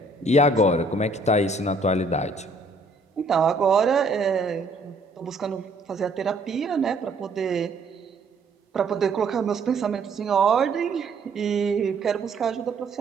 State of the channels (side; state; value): left; quieter; 3.1 dB